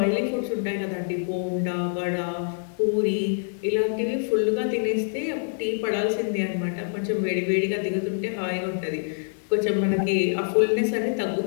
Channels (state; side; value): silent; right; digital silence